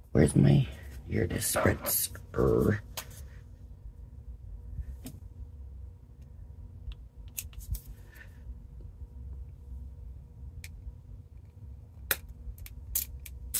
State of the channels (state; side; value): identical; both; correlation 1.00